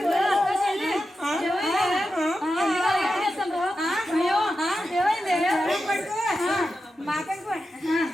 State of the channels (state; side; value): normal; both; correlation 0.90